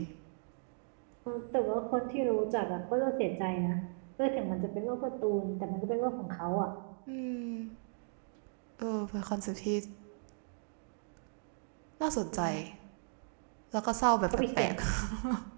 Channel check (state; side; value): silent; left; digital silence